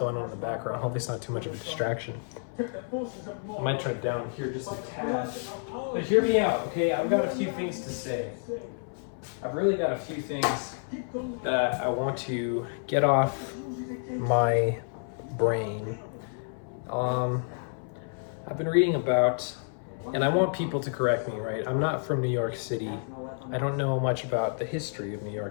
on in the background. Hopefully it's not too much of a distraction. I might turn it down here just a tad. But hear me out, okay? I've got a few things to say. I've really got a few things that I want to get off my brain. I've been reading about, and I want people to correct me, right? I'm not from New York City. I don't know much about the history of New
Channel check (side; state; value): right; silent; 58 dB below the other